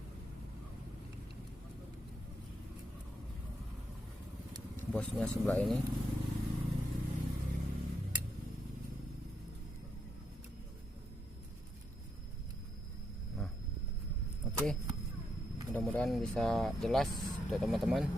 Bosnya sebelah ini. Nah, oke. Mudah-mudahan bisa jelas untuk teman-teman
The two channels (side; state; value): both; normal; correlation 0.80